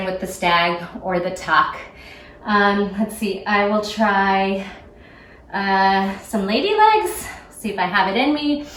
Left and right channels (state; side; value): identical; both; correlation 1.00